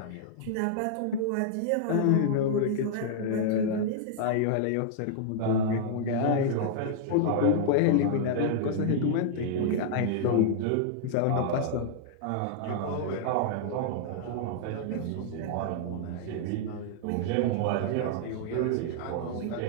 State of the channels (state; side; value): different; both; correlation -0.01